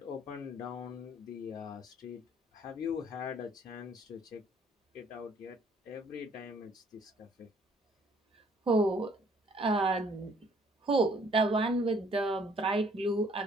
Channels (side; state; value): both; normal; correlation 0.61